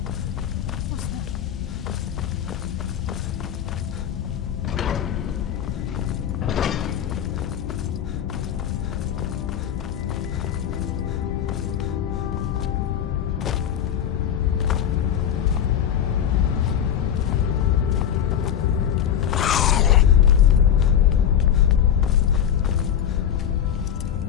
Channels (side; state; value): right; quieter; 9.4 dB